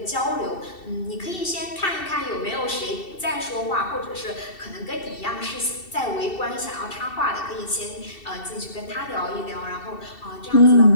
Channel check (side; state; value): right; late; 2.7 ms